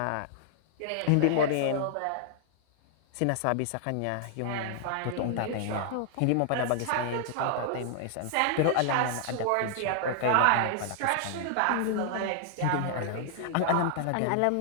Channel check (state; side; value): different; both; correlation -0.01